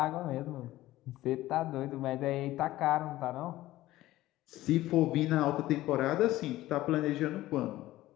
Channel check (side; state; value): right; quieter; 16.0 dB